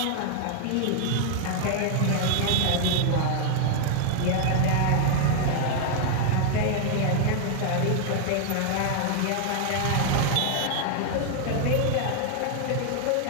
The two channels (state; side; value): different; both; correlation 0.00